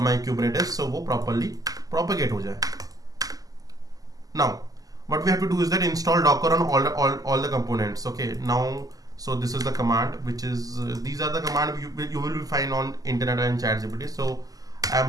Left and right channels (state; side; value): late; left; 0.17 ms